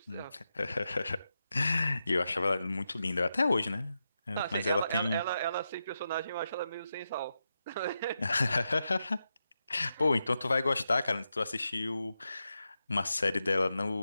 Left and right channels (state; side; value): inverted; both; correlation -0.88